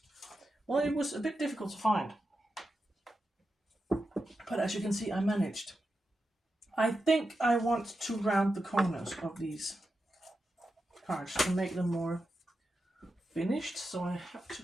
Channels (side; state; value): both; normal; correlation 0.89